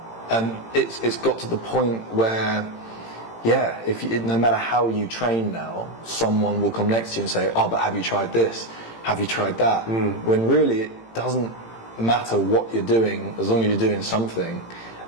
And it's got to the point where, yeah, no matter how you train now, someone will come next to you and say, oh, but have you tried this? Have you tried that? When really it doesn't matter what you're doing, as long as you're doing something.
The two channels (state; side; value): late; right; 18 ms